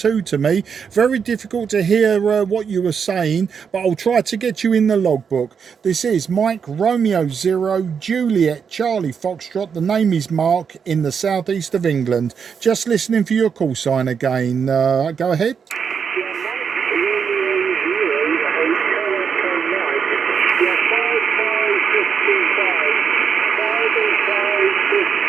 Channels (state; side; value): quieter; left; 6.6 dB